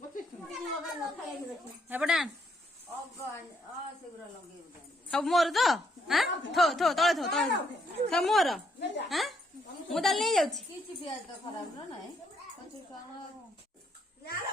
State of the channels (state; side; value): normal; both; correlation 0.72